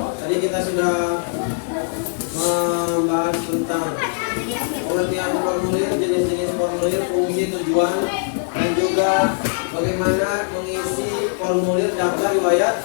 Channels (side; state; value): right; silent; digital silence